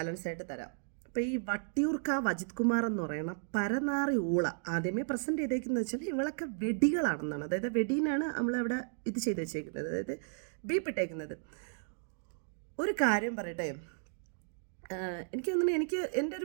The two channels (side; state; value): left; silent; digital silence